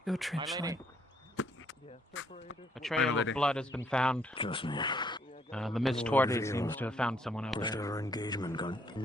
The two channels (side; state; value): both; normal; correlation 0.67